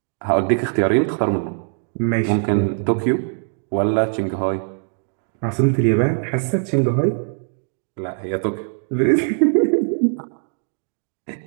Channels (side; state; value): left; silent; 60 dB below the other